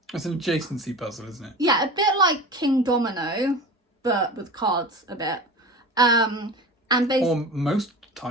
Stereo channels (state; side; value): normal; both; correlation 0.33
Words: It's an adjacency puzzle, isn't it? Yeah, a bit like King Domino, but with cards a bit. And or most